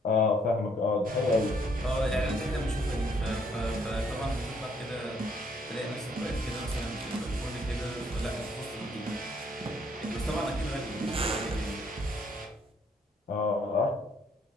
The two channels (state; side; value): normal; both; correlation 0.67